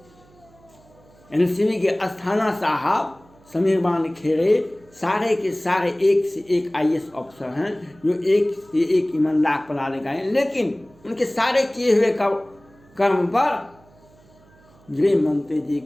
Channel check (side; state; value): right; noise; hum, 28 dB below the sound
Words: एनसीबी के अस्थाना साहब समीर बान खेड़े सारे के सारे एक से एक आईएएस अफसर हैं, जो एक से एक ईमानदार पदाधिकारी हैं, लेकिन उनके सारे किए हुए कर्म पर गृह मंत्री जी